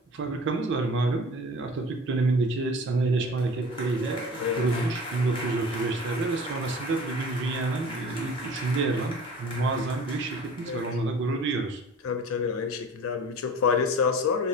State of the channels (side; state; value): both; normal; correlation 0.42